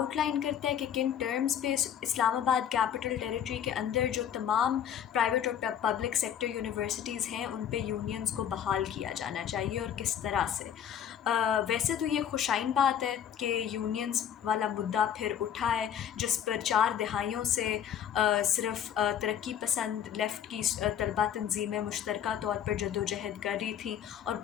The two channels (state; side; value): quieter; right; 9.3 dB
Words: करता है कि किन टर्म्स पे इस्लामाबाद कैपिटल टेरिटरी के अंदर जो तमाम प्राइवेट और पब्लिक सेक्टर यूनिवर्सिटीज़ हैं उन पे यूनियंस को बहाल किया जाना चाहिए और किस तरह से। वैसे तो ये खुशाइन बात है कि यूनियंस वाला मुद्दा फिर उठा है, जिस पर 4 दहाइयों से सिर्फ तरक्की पसंद लेफ़्ट की तलबा तंजीमें मुश्तरका तौर पर जदोजहद कर रही थी और